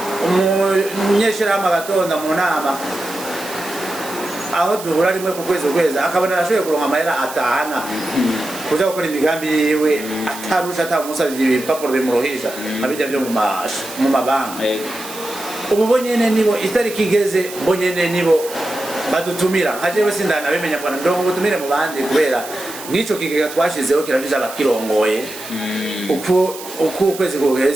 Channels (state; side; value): noise; right; hiss, 13 dB below the sound